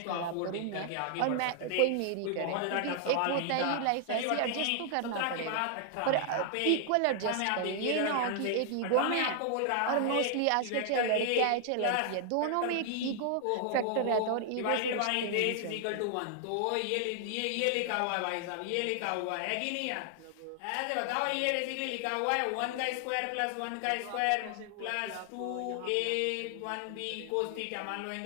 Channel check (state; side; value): different; both; correlation 0.00